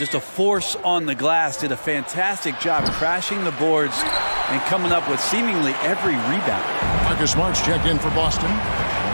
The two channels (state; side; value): inverted; both; correlation -1.00